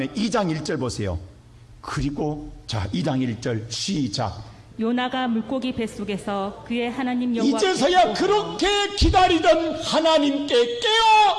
2장 1절 보세요. 그리고 자 2장 1절 시작. 요나가 물고기 뱃속에서 그의 하나님 여호와 이제서야 그렇게 기다리던 하나님께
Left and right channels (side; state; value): both; identical; correlation 1.00